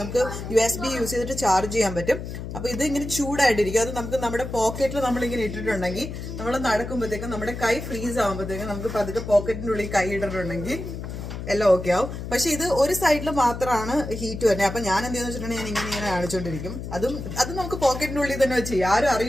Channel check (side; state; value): left; noise; hum, 8 dB below the sound